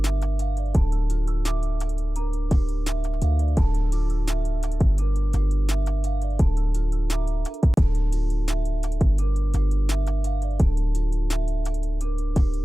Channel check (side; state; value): both; normal; correlation 0.96